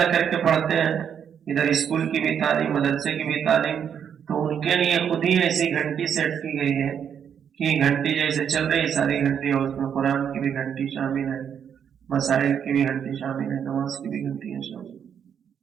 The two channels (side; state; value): left; quieter; 8.1 dB